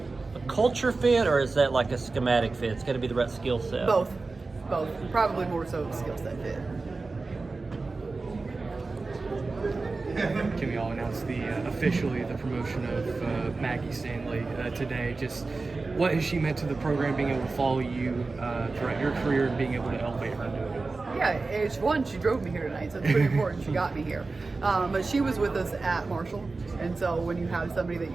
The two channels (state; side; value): quieter; left; 3.8 dB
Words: a culture fit, or is that like a schematic fit? It's got to be the right skill set. Both. Probably more so skill set fit. Kim, y'all announced officially the promotion of Maggie Stanley today. Just what has she meant to the program, being able to follow you throughout your career and being able to elevate her into it? Yeah, she drove me here tonight, so it's pretty important she got me here. But she was with us at Marshall, and so when you have somebody that